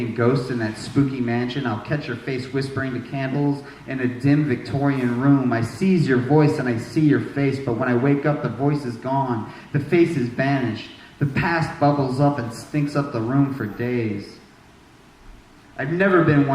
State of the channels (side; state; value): both; identical; correlation 1.00